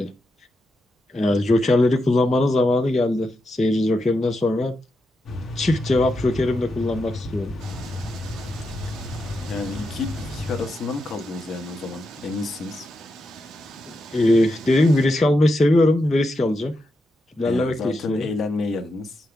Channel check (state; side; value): normal; both; correlation 0.86